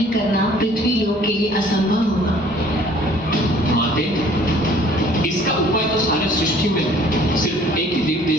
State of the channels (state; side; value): normal; both; correlation 0.55